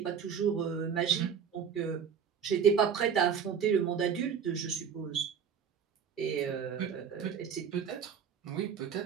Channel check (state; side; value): quieter; left; 7.3 dB